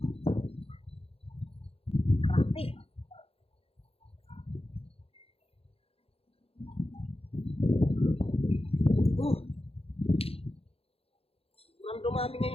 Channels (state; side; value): late; right; 0.28 ms